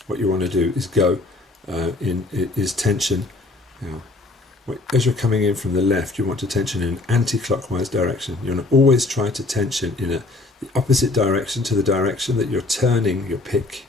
What you want to do is go is tension. As you're coming in from the left, you want to tension in an anti-clockwise direction. You want to always try to tension in the opposite direction to the direction that you're turning your pick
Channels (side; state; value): right; quieter; 3.1 dB